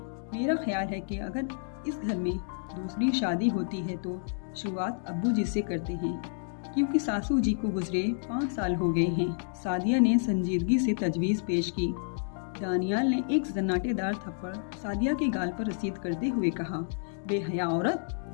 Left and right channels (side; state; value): right; silent; digital silence